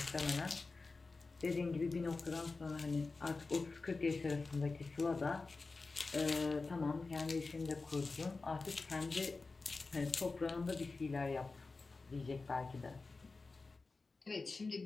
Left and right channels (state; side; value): quieter; right; 3.9 dB